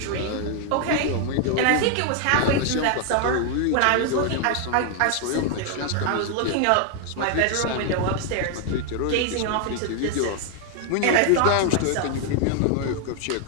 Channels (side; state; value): both; different; correlation 0.00